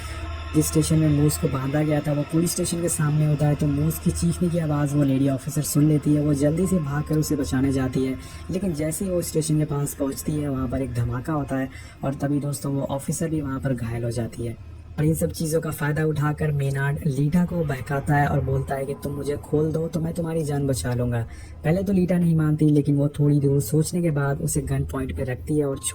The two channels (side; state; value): both; identical; correlation 1.00